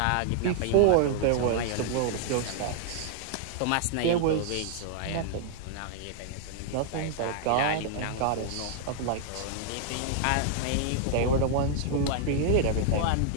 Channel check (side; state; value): both; different; correlation -0.01